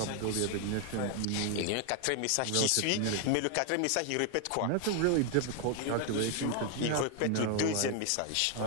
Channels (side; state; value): both; different; correlation 0.00